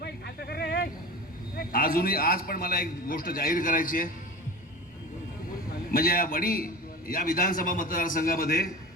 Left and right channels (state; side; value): normal; both; correlation 0.32